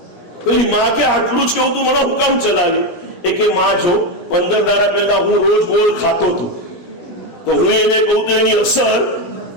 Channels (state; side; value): late; right; 17 ms